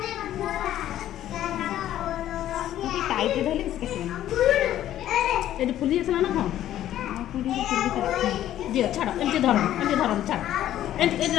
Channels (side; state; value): right; quieter; 12.3 dB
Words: कि टाइट धले इसके ए फुली असला ना हां फुली दियो छाड़ एंते धर छाड़ एंते